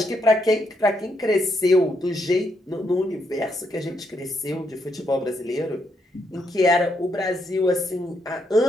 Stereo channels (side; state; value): both; normal; correlation 0.77